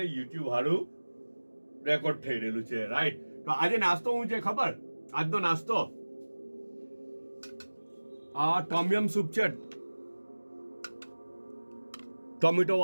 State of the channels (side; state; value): both; inverted; correlation -1.00